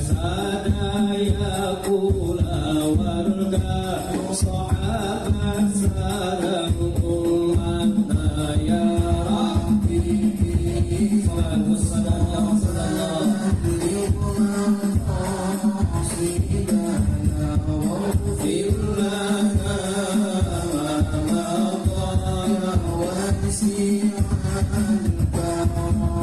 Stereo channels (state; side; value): identical; both; correlation 1.00